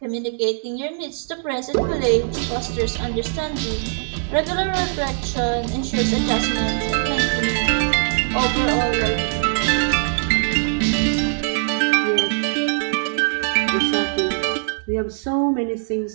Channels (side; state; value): left; silent; digital silence